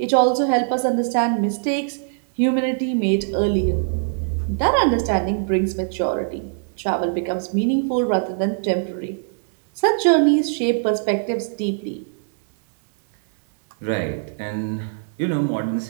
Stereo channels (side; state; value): left; silent; digital silence